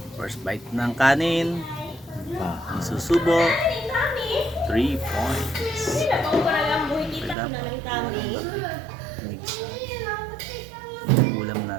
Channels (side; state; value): left; drops out; at 7.4 s